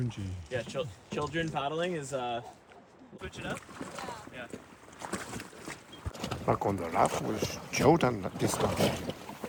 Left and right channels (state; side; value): identical; both; correlation 1.00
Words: Yeah, children paddling is switch it up. Yeah. Back on the raft with Jordan this time.